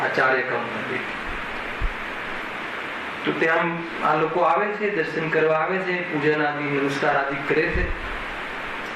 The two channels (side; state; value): both; identical; correlation 1.00